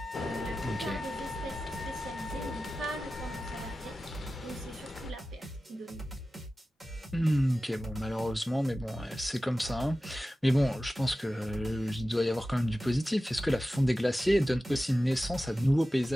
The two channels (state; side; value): normal; both; correlation 0.95